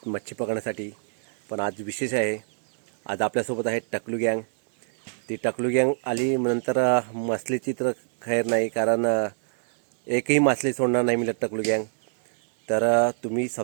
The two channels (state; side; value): silent; left; digital silence